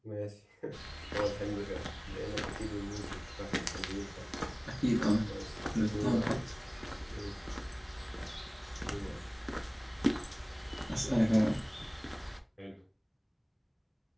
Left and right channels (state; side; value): identical; both; correlation 1.00